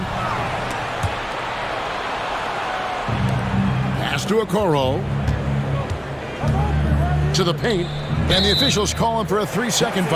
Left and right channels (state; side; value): identical; both; correlation 1.00